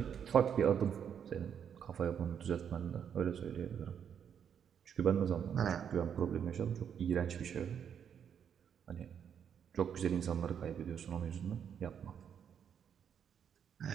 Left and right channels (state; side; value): quieter; left; 8.1 dB